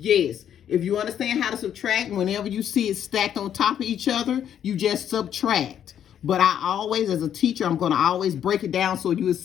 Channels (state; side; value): quieter; right; 9.6 dB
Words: If you understand how to subtract, whenever you see it stacked on top of each other, you just subtract. But I always, as a teacher, I'm going to always break it down so you will